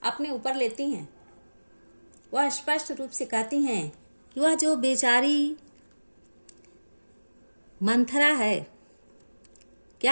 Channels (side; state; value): both; inverted; correlation -1.00